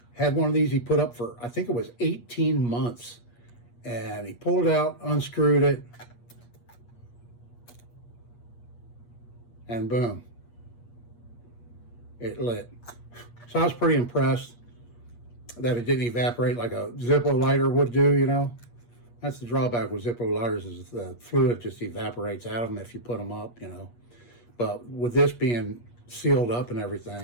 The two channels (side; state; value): right; late; 8.4 ms